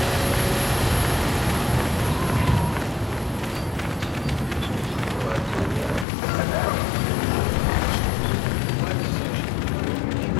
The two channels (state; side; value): drops out; right; at 6.1 s